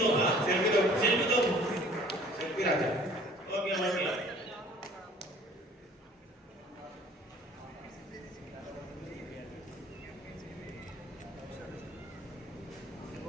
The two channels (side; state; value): both; normal; correlation 0.52